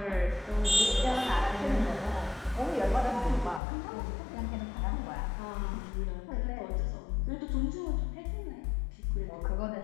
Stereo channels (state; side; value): drops out; right; at 3.6 s